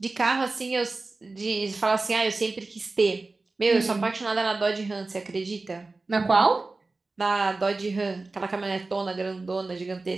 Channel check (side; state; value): left; quieter; 3.5 dB